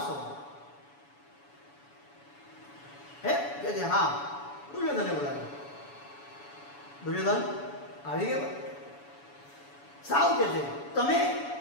હે કે છે? હા. દુર્યોધને બોલાવ્યો. દુર્યોધન આવી ગયા. સાવ કે છે, તમે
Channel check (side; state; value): right; late; 7.0 ms